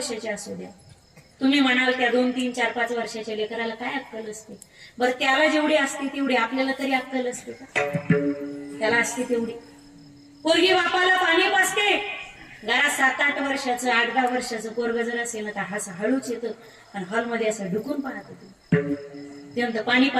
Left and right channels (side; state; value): both; identical; correlation 1.00